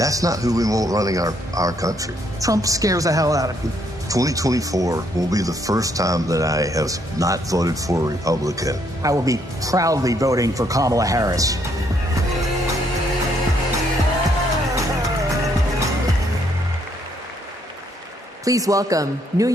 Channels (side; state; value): both; normal; correlation 0.71